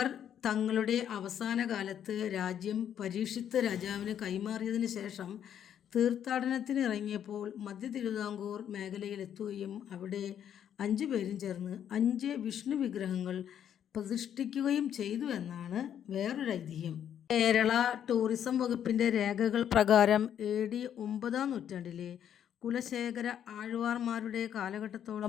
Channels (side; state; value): right; quieter; 9.5 dB